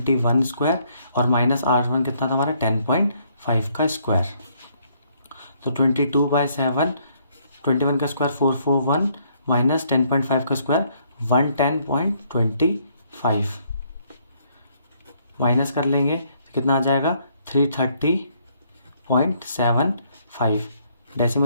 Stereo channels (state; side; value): inverted; both; correlation -0.68